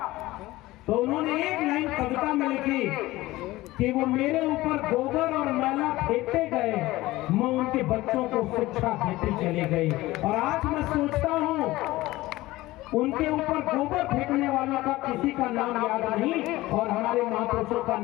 तो उन्होंने एक लाइन कविता में लिखी कि वो मेरे ऊपर गोबर और मैला फेंकते गए, मैं उनके बच्चों को शिक्षा देते चले गई। और आज मैं सोचता हूँ उनके ऊपर गोबर फेंकने वालों का किसी का नाम याद नहीं, और हमारे महापुरुषों का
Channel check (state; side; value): quieter; right; 18.2 dB